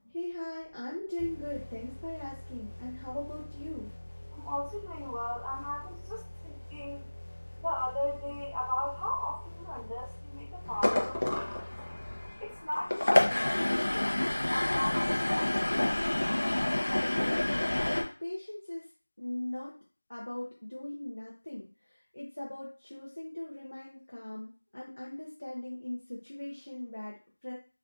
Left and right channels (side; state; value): both; inverted; correlation -1.00